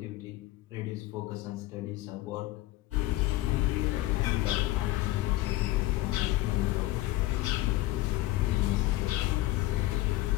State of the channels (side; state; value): right; quieter; 17.1 dB